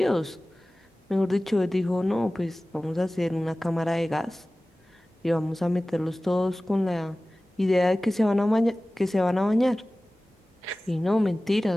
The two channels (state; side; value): normal; both; correlation 0.97